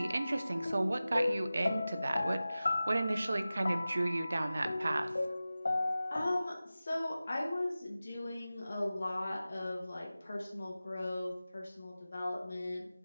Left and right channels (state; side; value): inverted; both; correlation -0.96